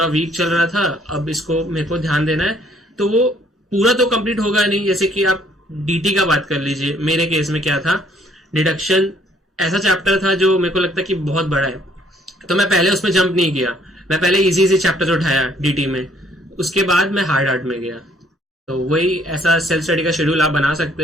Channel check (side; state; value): both; normal; correlation 0.63